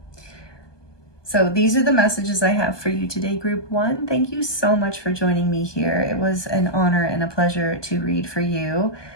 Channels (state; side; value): late; right; 1.2 ms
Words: So these are the messages I have for you today, group 1. Thank you so much for joining me here. It was an honor and a pleasure to read for you.